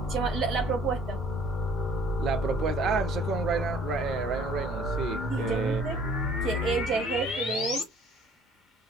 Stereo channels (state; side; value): normal; both; correlation 0.56